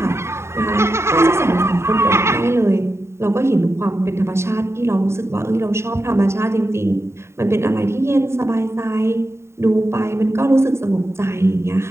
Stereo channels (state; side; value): late; left; 0.13 ms